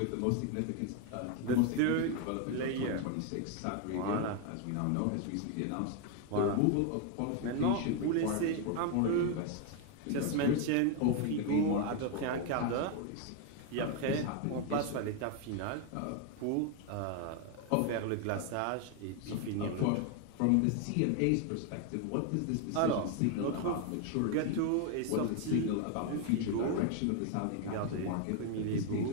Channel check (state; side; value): different; both; correlation 0.01